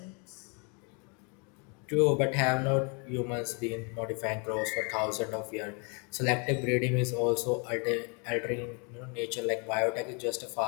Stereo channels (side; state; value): right; quieter; 34.4 dB